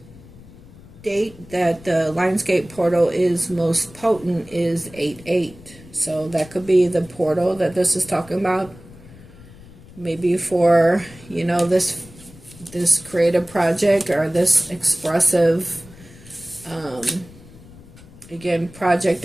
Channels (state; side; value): noise; left; rumble, 21 dB below the sound